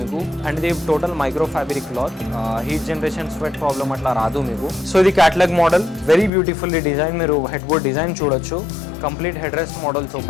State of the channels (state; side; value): drops out; right; at 6.3 s